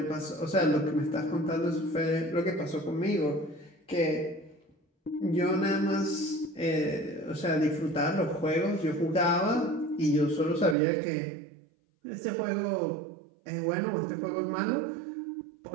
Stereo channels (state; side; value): drops out; left; at 10.8 s